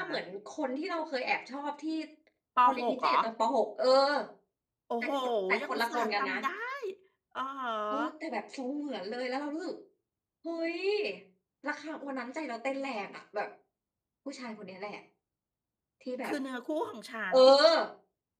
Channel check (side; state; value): both; identical; correlation 1.00